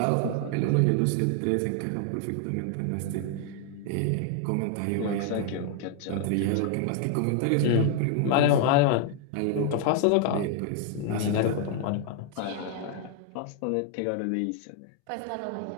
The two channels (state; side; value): different; both; correlation 0.00